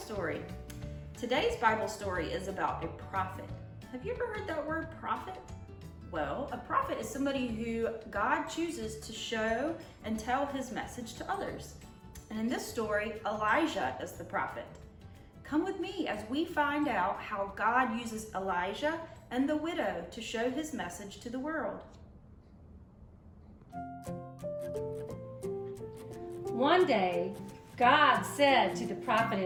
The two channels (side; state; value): both; identical; correlation 1.00